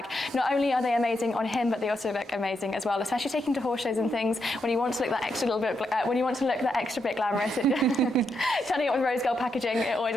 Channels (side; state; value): both; normal; correlation 0.82